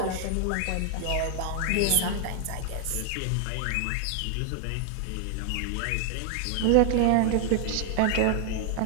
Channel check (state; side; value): different; both; correlation 0.00